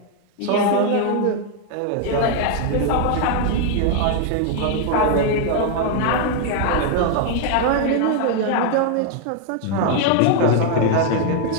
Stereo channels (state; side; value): different; both; correlation 0.00